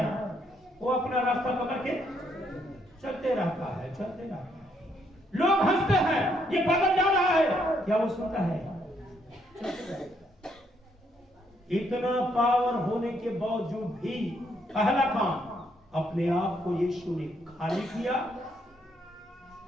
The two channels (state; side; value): normal; both; correlation 0.73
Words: वो अपना रास्ता पकड़ के चलते रहता है, चलते रहता है। लोग हंसते हैं, ये पागल जा रहा है, क्या वो सुनता है? चलते रहता है। इतना पावर होने के बावजूद भी पहला काम अपने आप को यीशु ने खाली किया,